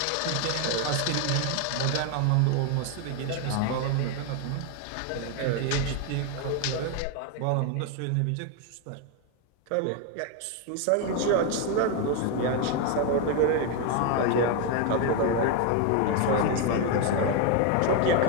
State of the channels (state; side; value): different; both; correlation 0.01